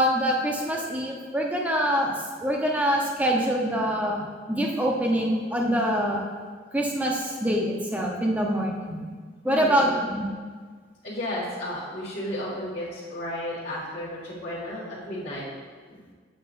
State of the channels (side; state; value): both; normal; correlation 0.49